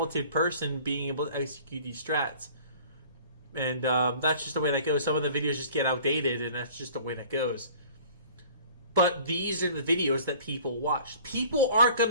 person being able to execute these strats. And that's just the way that goes. Some of the videos just get outdated, and that's just the way that goes. But these are the videos that people watch. People aren't going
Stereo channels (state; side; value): inverted; both; correlation -0.49